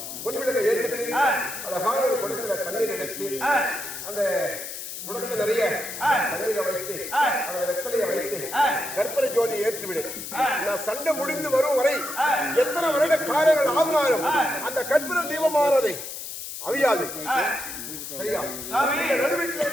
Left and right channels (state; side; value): noise; left; hiss, 8 dB below the sound